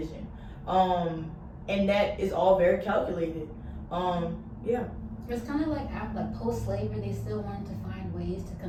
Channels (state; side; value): identical; both; correlation 1.00